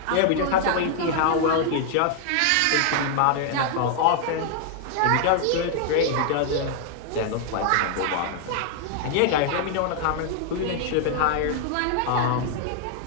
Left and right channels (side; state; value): both; different; correlation 0.00